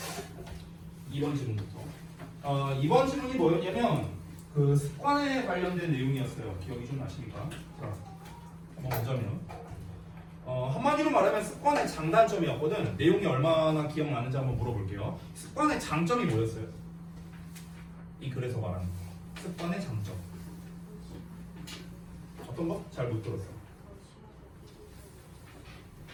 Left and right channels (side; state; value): both; identical; correlation 1.00